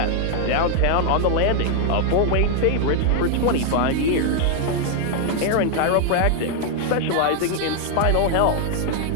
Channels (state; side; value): different; both; correlation 0.00